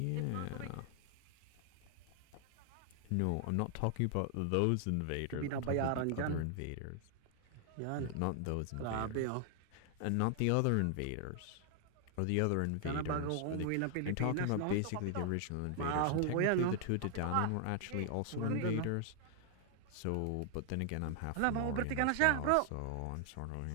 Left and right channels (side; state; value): both; different; correlation 0.00